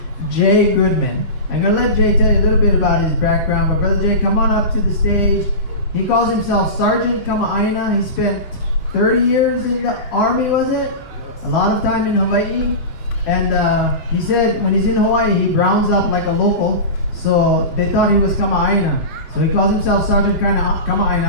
Jay Goodman. I'm going to let Jay tell you a little bit about his background. But Brother Jay, come on up to the stage. He calls himself Sergeant Kamaaina. He spent 30 years in the Army, was it? Yes. A lot of time in Hawaii. And he said when he's in Hawaii, he browns up like a local. So they thought he was Kamaaina. So he calls himself Sergeant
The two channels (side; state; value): right; late; 2.9 ms